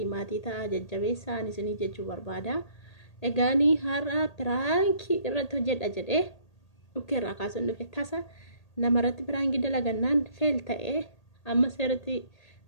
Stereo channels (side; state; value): right; late; 1.8 ms